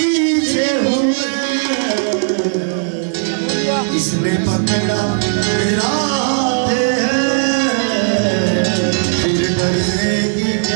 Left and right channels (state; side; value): silent; left; 69 dB below the other